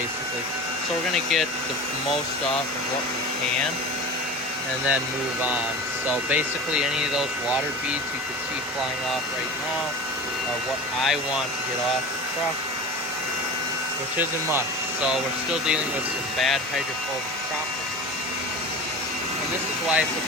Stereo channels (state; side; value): normal; both; correlation 0.32